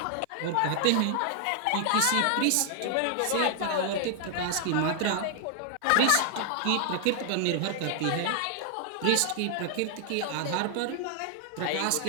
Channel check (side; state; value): both; different; correlation 0.00